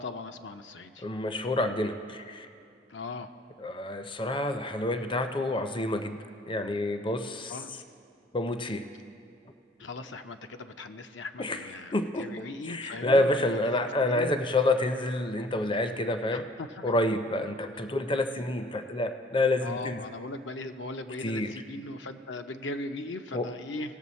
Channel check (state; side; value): normal; both; correlation 0.55